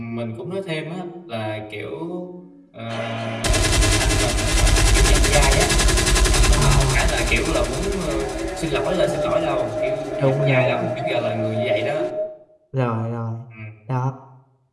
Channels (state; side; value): identical; both; correlation 1.00